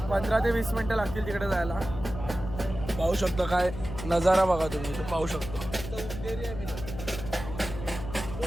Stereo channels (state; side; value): noise; left; hum, 9 dB below the sound